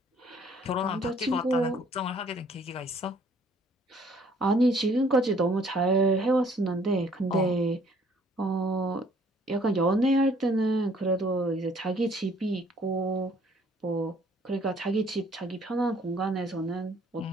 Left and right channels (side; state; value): both; normal; correlation 0.60